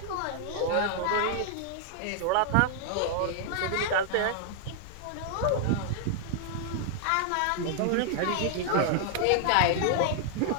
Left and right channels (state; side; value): different; both; correlation 0.00